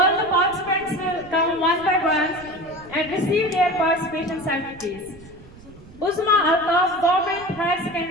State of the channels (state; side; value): noise; right; rumble, 21 dB below the sound